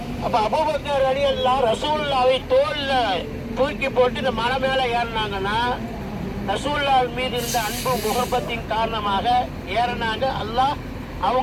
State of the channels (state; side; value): identical; both; correlation 1.00